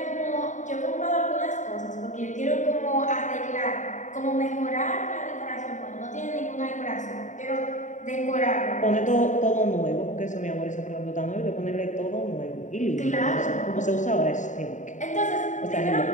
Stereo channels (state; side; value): late; right; 0.36 ms